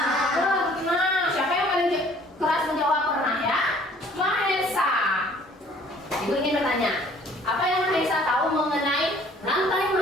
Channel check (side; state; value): both; normal; correlation 0.56